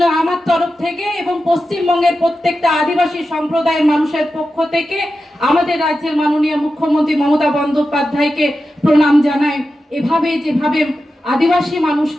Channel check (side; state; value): both; normal; correlation 0.91